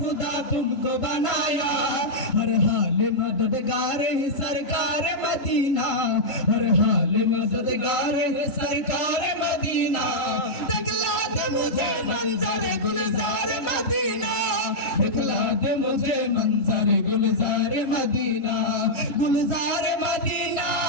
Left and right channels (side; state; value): right; late; 3.7 ms